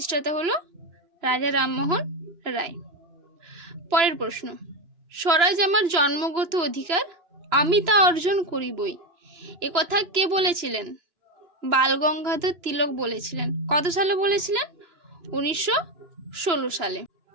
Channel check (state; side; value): late; left; 2.9 ms